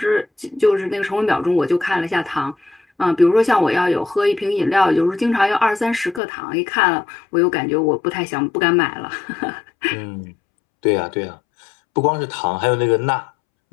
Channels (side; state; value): right; drops out; at 6.2 s